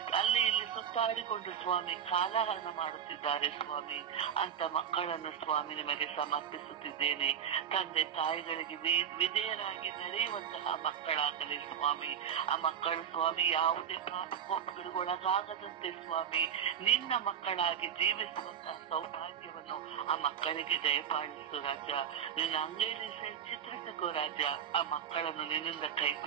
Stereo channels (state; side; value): quieter; left; 8.5 dB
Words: ಅಲ್ಲಿ ಇಲ್ಲಿ ಸುತ್ತಾಡಿಕೊಂಡು ಸ್ವಾಮಿ ಕಾಲಹರಣ ಮಾಡುತ್ತಿದ್ದಾರೆ ಸ್ವಾಮಿ. ಅಂತ ಮಕ್ಕಳನ್ನು ಸ್ವಾಮಿ ನಿಮಗೆ ಸಮರ್ಪಿಸುತ್ತಿದ್ದೇನೆ. ತಂದೆ ತಾಯಿಗಳಿಗೆ ವಿಧೇಯರಾಗಿ ನಡೆಯುವಂತಹ ಮಕ್ಕಳಾಗಲಿ ಸ್ವಾಮಿ. ಆ ಮಕ್ಕಳು ಸ್ವಾಮಿ ಯಾವುದೇ ಪಾಪಕೋಪಗಳಿಗೆ ಒಳಗಾಗದಂತೆ ಸ್ವಾಮಿ ನಿನ್ನ ಮಕ್ಕಳಾಗಿ ಜೀವಿಸುವಂತಹ ಸೌಭಾಗ್ಯವನ್ನು ಆ ಮಕ್ಕಳಿಗೆ ದಯಪಾಲಿಸು ರಾಜ. ನಿನ್ನ ಅಂಗೈಲಿ ಚಿತ್ರಿಸಿಕೋ ರಾಜ. ಆ ಮಕ್ಕಳನ್ನು ನಿನ್ನಿಂದ ಕೈ